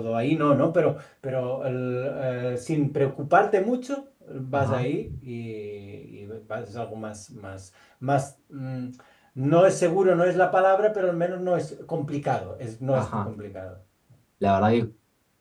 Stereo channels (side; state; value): both; identical; correlation 1.00